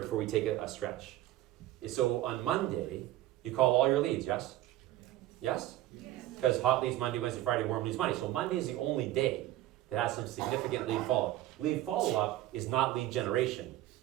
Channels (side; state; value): left; quieter; 14.8 dB